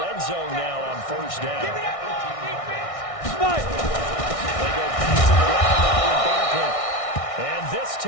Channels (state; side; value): late; right; 1.6 ms